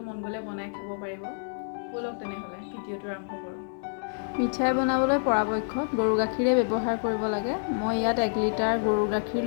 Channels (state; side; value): silent; right; digital silence